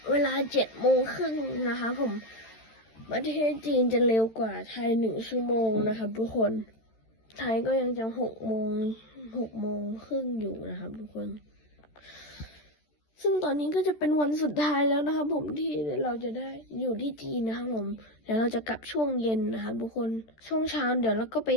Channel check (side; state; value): right; late; 13 ms